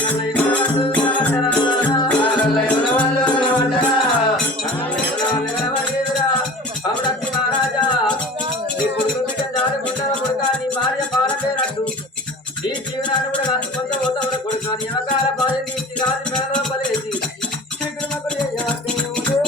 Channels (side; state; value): both; normal; correlation 0.40